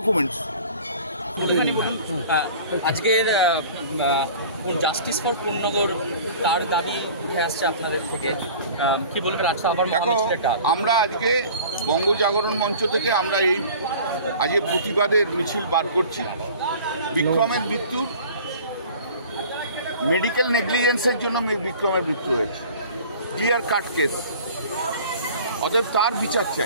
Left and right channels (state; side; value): inverted; both; correlation -0.44